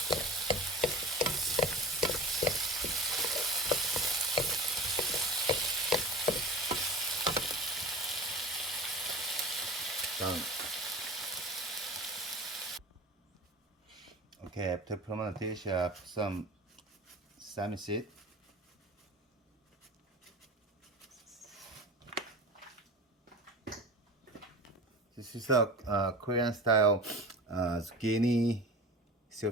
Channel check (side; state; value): both; normal; correlation 0.33